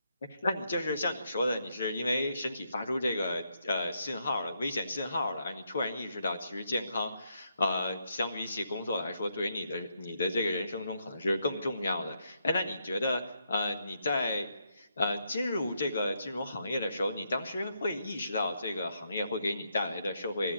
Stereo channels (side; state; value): both; inverted; correlation -0.78